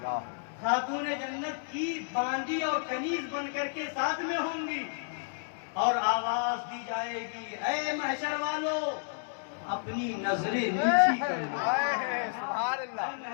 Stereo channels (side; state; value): right; silent; digital silence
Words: خاتون جنت کی باندی اور کنیز بن کر کے ساتھ میں ہوں گی اور آواز دی جائے گی، اے محشر والو اپنی نظریں نیچی کر لو. سبحان اللہ.